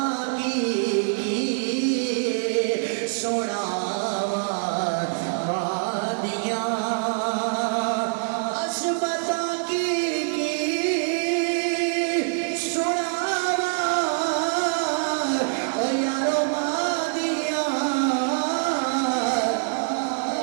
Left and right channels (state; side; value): silent; left; digital silence